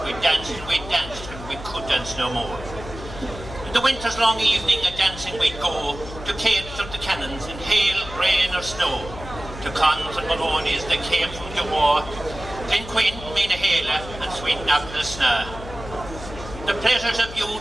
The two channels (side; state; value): left; noise; hum, 13 dB below the sound